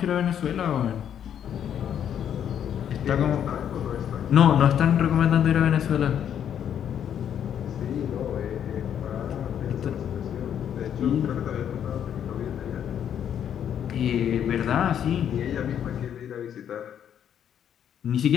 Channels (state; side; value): quieter; right; 9.3 dB